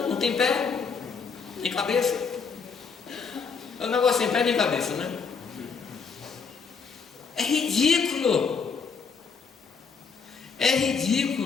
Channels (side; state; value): right; quieter; 5.5 dB